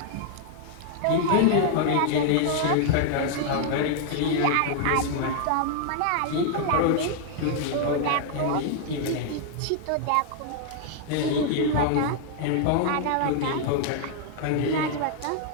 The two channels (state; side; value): different; both; correlation 0.00